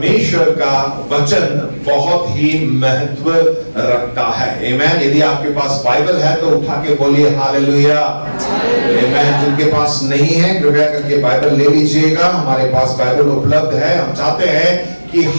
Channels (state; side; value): inverted; both; correlation -1.00